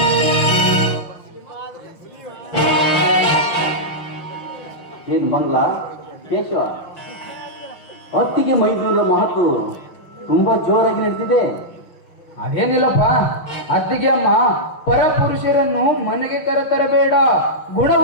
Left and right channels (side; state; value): right; late; 6.0 ms